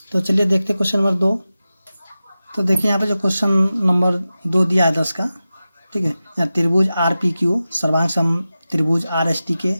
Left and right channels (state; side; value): inverted; both; correlation -0.94